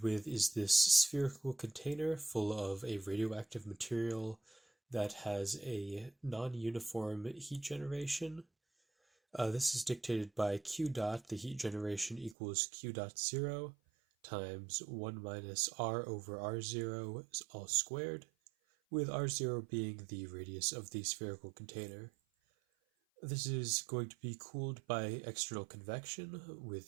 with is this spherical container full of a radioactive material that has a non-uniform heat generation. This is dictated by Q dot. The heat generation equals Q dot 0 times 1 minus R over R0 all squared, with R0 being the radius of the spherical container. This is going to be cooled by external convection with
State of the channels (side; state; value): left; drops out; at 12.4 s